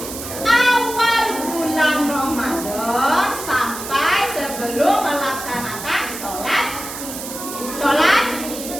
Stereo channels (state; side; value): noise; right; hiss, 9 dB below the sound